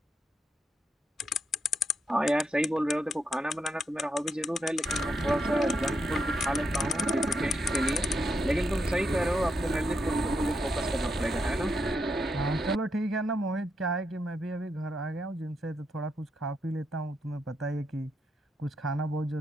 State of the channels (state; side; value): normal; both; correlation 0.81